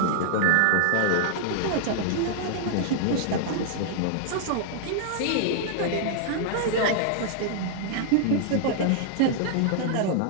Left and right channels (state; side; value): different; both; correlation -0.01